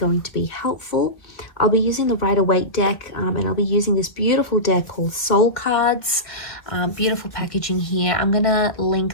to be helpful. I'll be using the Rider-Waite deck, and I'll be using this beautiful deck called Soul Cards. Beautiful packaging here. I'm gonna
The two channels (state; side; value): late; right; 1.8 ms